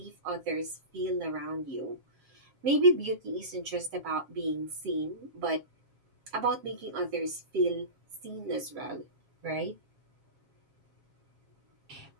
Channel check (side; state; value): left; late; 7.3 ms